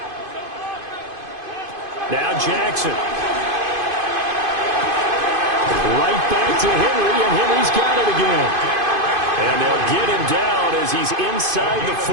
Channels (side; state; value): left; late; 2.5 ms